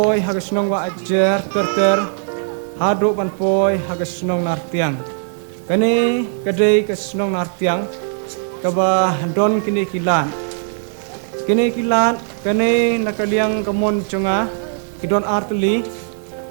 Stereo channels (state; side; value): silent; left; 63 dB below the other